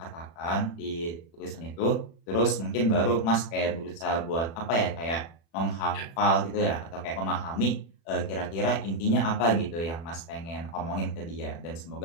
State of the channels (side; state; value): right; late; 36 ms